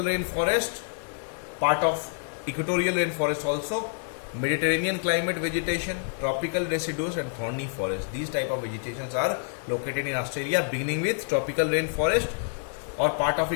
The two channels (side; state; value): right; silent; 60 dB below the other